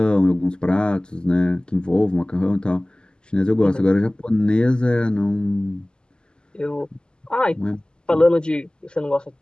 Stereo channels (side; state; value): right; late; 0.047 ms